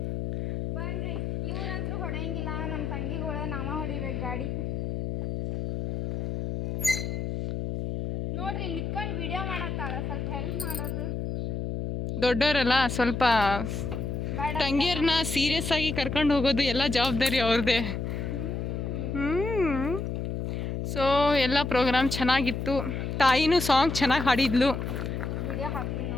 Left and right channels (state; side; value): noise; left; hum, 3 dB below the sound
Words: ಬನ್ರಿ. ಇವ್ರಂತೂ ಹೊಡೆಯಂಗಿಲ್ಲ, ನಮ್ಮ ತಂಗಿಗಳ ನಾವ ಹೊಡಿಬೇಕು ಗಾಡಿ. ನೋಡ್ರಿ ನಿತ್ಕೊಂಡು ವಿಡಿಯೋ ಮಾಡತ್ತಾಳ, ಸ್ವಲ್ಪ ಹೆಲ್ಪ್ ಮಾಡೋದು. ದೊಡ್ಡವರಲ್ಲ ಸ್ವಲ್ಪ ಬೇಡ ತಂಗಿಯರನ್ನ ಸೀರಿಯಸ್ ಆಗಿ ಕರ್ಕೊಂಡು ಹೋಗೋದು ಎಲ್ಲ ಜವಾಬ್ದಾರಿ ಅವ್ರದ್ದೇ. ಸೊ ಎಲ್ಲ ಪ್ರೋಗ್ರಾಮ್ ಚೆನ್ನಾಗಿತ್ತು. ತಾಯಿನೂ ಸಾಂಗ್ ಚೆನ್ನಾಗಿ ಹಾಡಿದ್ಲು. ವಿಡಿಯೋ ಹಾಕ್ತೀನಿ